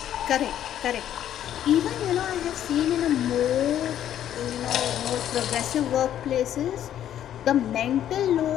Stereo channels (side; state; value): right; quieter; 10.9 dB